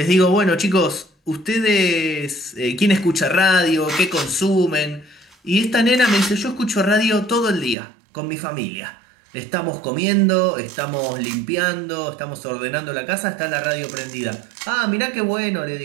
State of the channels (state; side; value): drops out; left; at 7.8 s